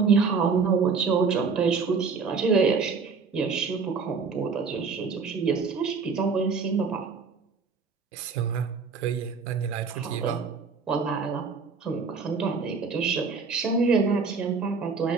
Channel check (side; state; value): left; quieter; 5.0 dB